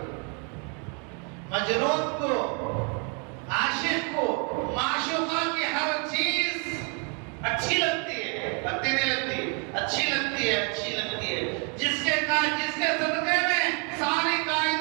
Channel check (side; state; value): left; quieter; 36.8 dB